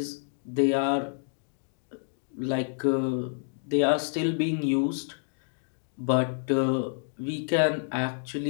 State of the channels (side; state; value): right; silent; digital silence